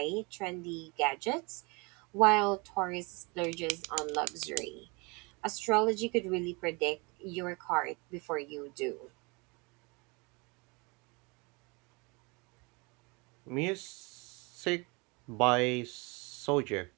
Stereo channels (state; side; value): quieter; left; 28.6 dB